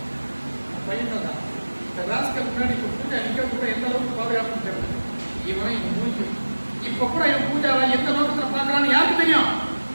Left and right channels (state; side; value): inverted; both; correlation -1.00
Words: பையன் தான் இந்த ராஸ்கல் முன்னாடி இப்போ பூஜா நிற்க கூட எந்த அளவுக்கு பாதுகாப்புன்னு தெரியல. இவன் இவன் மூஞ்சி இப்ப கூட இவன் பூஜாவை எந்த நோக்கத்துல பாக்குறான்னு யாருக்கு தெரியும்?